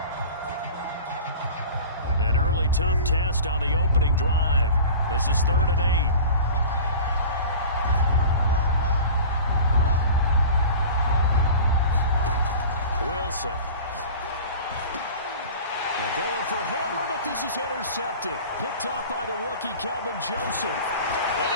An early tough test on the opening drive. This is 3rd and 8. Wilson. They're going for Hamler, but this is intercepted. Picked off by the rookie, Kelvin Joseph. And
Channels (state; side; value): inverted; both; correlation -0.38